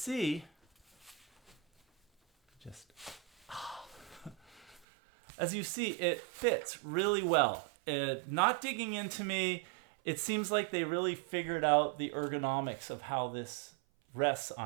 as you see, it fits really well. Not digging into me, it seems like they really figured out the ergonomics of how this rests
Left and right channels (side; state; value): left; drops out; at 4.8 s